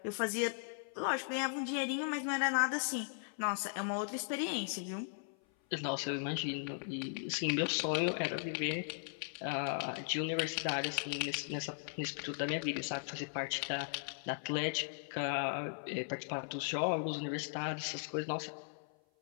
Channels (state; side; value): silent; right; 53 dB below the other